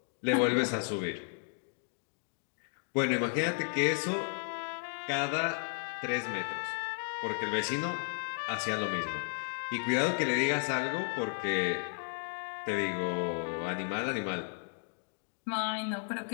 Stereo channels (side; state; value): right; silent; 55 dB below the other